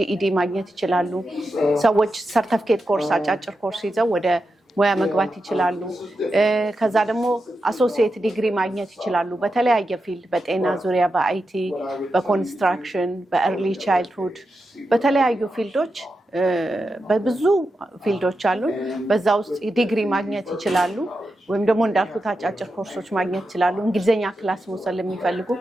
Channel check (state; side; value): normal; both; correlation 0.89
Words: ማግኘት ይችላሉ። ሰዎች ሰርተፊኬት ኮርስ አጫጭር ኮርስ ይዘው ወደ ሙያ መግባት ይችላሉ። ከዛ ደግሞ አሶሲየት ዲግሪ ማግኘት ይችላሉ በተለያየ ፊልድ፣ በጤና ዙሪያ፣ በአይቲ፣ በኮንስትራክሽን፣ በኤርሊ ቻይልድሁድ፣ በተለያዩ ፊልዶች በብዙ ፊልዶች አሉ። በዛ ውስጥ ዲግሪ ማግኘት ይችላሉ። ወይም ደግሞ እንዳልኩት አጫጭር ኮርሶች ማግኘት ይችላሉ። እንግሊዝኛ ክላስ መውሰድ ለሚፈልጉ